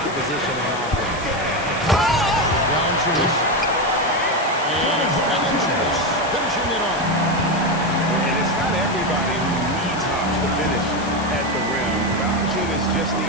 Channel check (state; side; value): noise; left; hiss, 15 dB below the sound